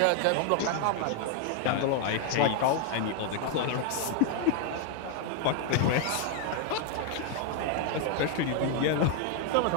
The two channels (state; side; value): different; both; correlation 0.00